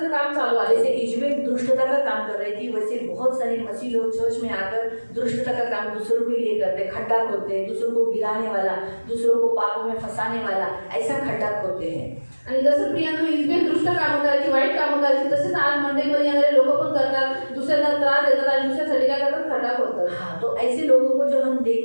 काम चालू आहे। जैसे इजबेल दुष्टता का काम कर रही थी, वैसे बहुत सारे मसीह लोग चर्च में आकर दुष्टता का काम दूसरों के लिए करते, खड्डा खोदते हैं, दूसरों को गिराने वाला, दूसरों को पापों में फंसाने वाला, ऐसा खड्डा खोदते हैं। आणि जसं प्रियांका इजबेल दुष्ट कामं करायची, वाईट कामं करायची, तसेच आज मंडळीमध्ये येणारे लोक पण करतात, दुसऱ्यांना त्रास देतात आणि दुसऱ्यासाठी काय करतात, खड्डा खोदतात। हाँ, तो ऐसे लोगों को जब हम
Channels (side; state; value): both; inverted; correlation -1.00